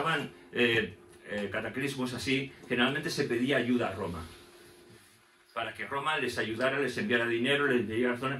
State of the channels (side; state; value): both; identical; correlation 1.00